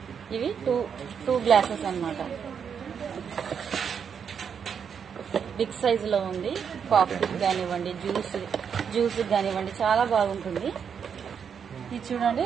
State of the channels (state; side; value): quieter; left; 7.2 dB